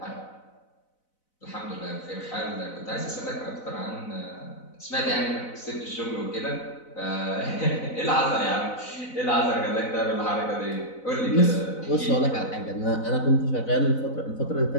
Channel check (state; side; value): late; right; 4.0 ms